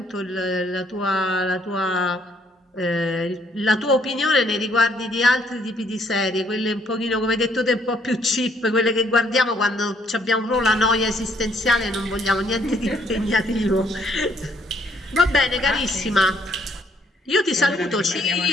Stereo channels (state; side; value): normal; both; correlation 0.67